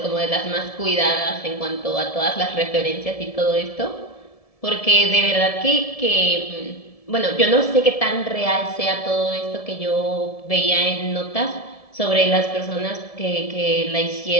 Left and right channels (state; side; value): late; right; 1.7 ms